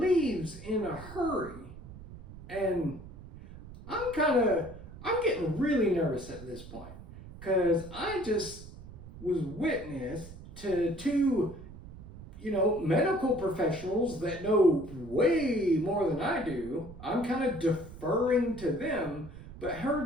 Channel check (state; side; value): noise; right; rumble, 15 dB below the sound